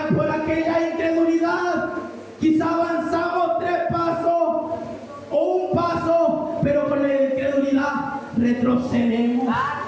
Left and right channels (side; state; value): both; identical; correlation 1.00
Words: aquella incredulidad quizá avanzamos 3 pasos o un paso, pero con la incredulidad retrocedemos.